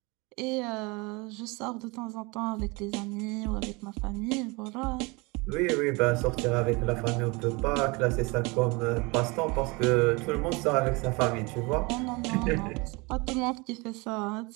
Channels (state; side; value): quieter; left; 26.6 dB